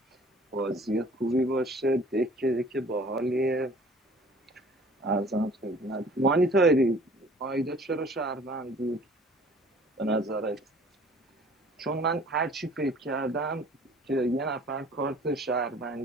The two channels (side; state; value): both; normal; correlation 0.51